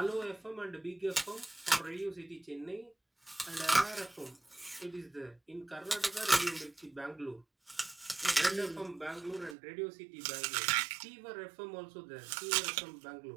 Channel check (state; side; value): drops out; left; at 9.6 s